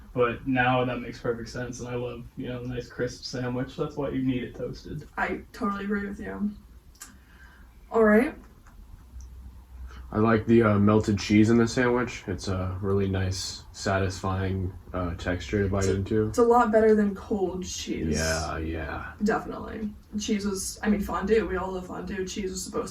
But now that makes perfect sense, and I love, a nice crisp sandwich. That's why you need it toasted. I totally agree with you. All right. I like the melted cheese in the sandwich. It's a really nice, satisfying texture to bite into. It's a lot better than cold cheese. Yeah. Definitely. Cheese was, fondue. We all love fondue. Cheese was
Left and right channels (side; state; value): both; identical; correlation 1.00